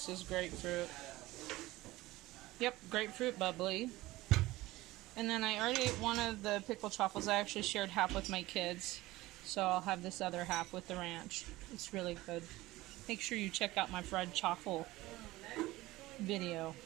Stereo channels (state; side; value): quieter; left; 18.4 dB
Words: is grapefruit. Yep, grapefruit bubbly. And then I already ate one of the pickled chaffles. I actually shared half with my kids. So I'll have this other half with the ranch. It's really good. Make sure you check out my fried chaffle video.